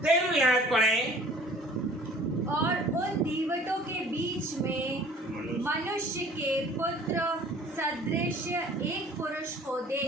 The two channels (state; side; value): normal; both; correlation 0.51